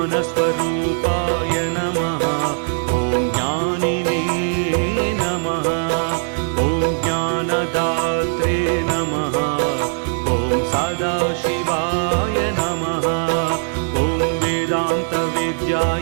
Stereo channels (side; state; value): left; silent; 66 dB below the other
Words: नमः ॐ ज्ञानिने नमः ॐ ज्ञानदात्रे नमः ॐ सदाशिवाय नमः ॐ